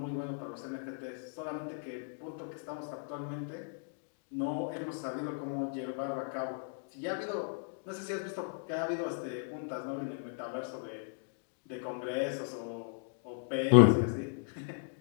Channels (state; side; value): silent; right; digital silence